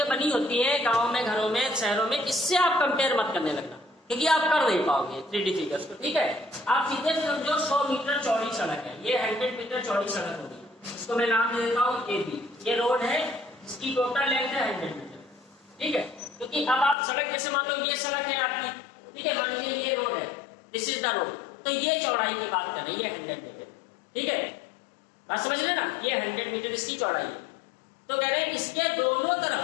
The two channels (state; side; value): drops out; right; at 16.9 s